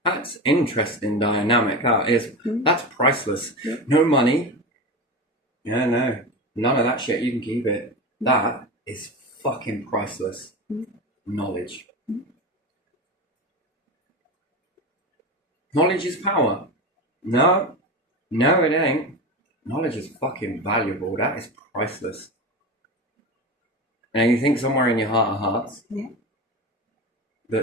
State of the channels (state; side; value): normal; both; correlation 0.24